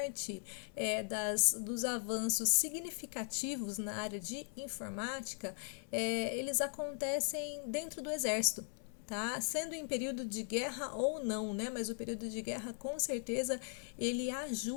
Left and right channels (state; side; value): silent; right; 52 dB below the other